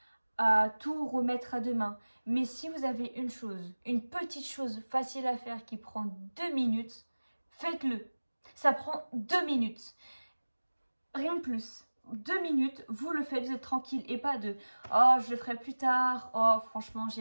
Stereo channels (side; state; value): both; inverted; correlation -1.00